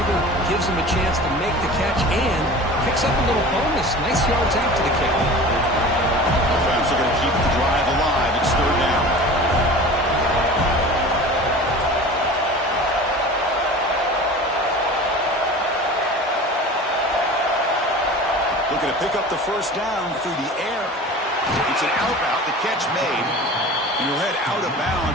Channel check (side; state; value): both; normal; correlation 0.38